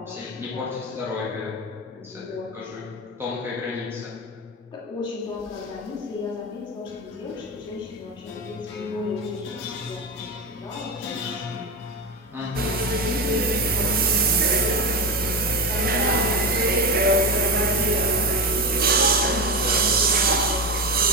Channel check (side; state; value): both; normal; correlation 0.19